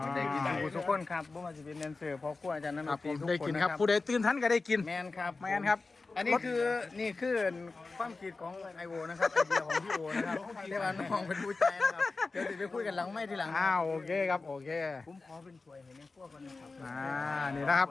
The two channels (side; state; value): right; quieter; 3.8 dB